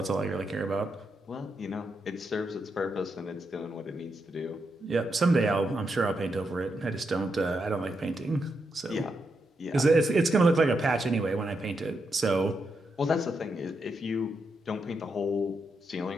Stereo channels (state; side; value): normal; both; correlation 0.83